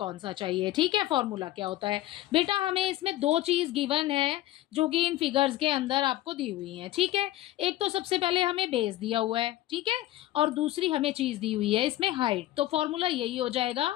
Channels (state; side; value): quieter; right; 15.1 dB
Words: सा चाहिए। ठीक है, फॉर्मूला क्या होता है बेटा? हमें इसमें दो चीज गिवन है जो कि इन फिगर्स के अंदर आपको दी हुई है। ठीक है, एक तो सबसे पहले हमें बेस दिया हुआ है, ठीक है, और दूसरी हमें चीज दी हुई है इसमें हाइट। तो फॉर्मूला यही हो